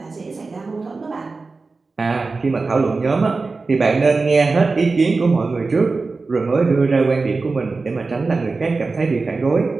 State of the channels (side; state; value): left; quieter; 3.9 dB